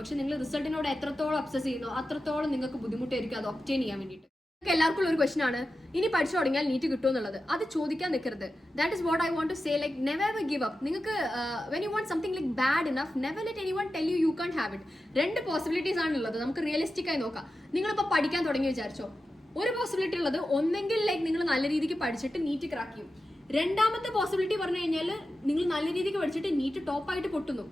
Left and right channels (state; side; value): normal; both; correlation 0.92